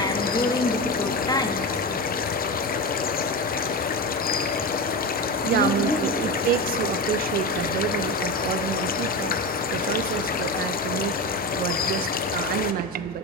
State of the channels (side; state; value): both; normal; correlation 0.21